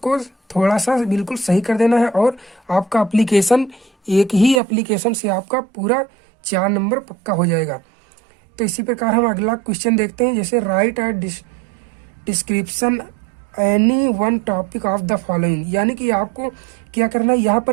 थोड़ा सा बिल्कुल सही कर देना है और आपका एप्लीकेशन, एक ही एप्लीकेशन से आपका पूरा 4 नंबर पक्का हो जाएगा। तो इसी प्रकार हम अगला क्वेश्चन देखते हैं। जैसे right a description any one topic of the following. यानी कि आपको क्या करना है, यहाँ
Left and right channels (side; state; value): left; drops out; at 4.6 s